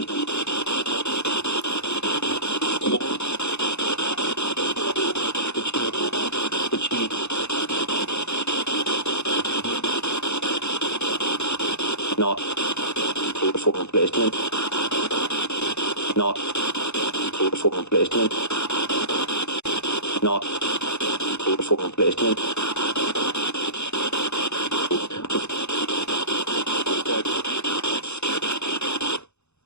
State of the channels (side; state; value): right; late; 0.81 ms